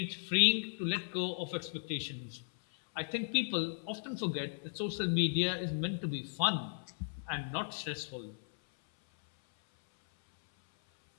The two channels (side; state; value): right; silent; 54 dB below the other